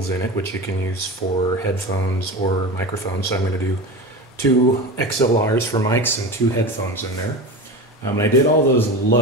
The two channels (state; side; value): normal; both; correlation 0.27